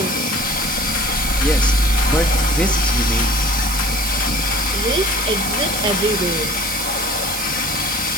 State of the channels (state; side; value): noise; right; hiss, 4 dB below the sound